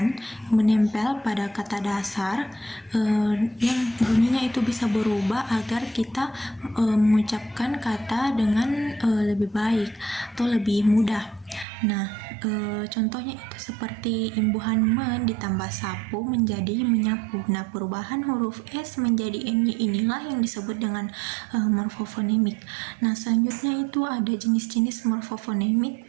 menempel pada kata dasar yang bunyinya itu bisa berubah agar kita mengucapkan kata dengan lebih baik atau lebih mudah. Nah, contohnya itu seperti imbuhan men ditambah sapu menjadi menyapu. Nah, perubahan huruf S menjadi NY inilah yang disebut dengan morfofonemik. Nah, selanjutnya itu ada jenis-jenis morfofonemik.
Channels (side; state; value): left; drops out; at 11.7 s